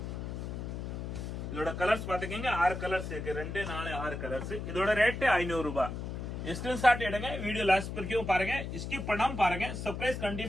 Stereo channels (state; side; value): noise; left; hum, 6 dB below the sound